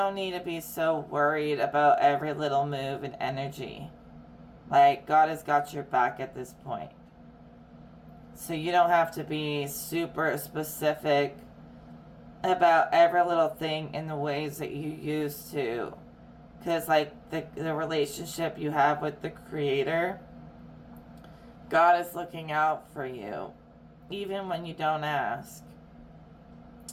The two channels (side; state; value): both; identical; correlation 1.00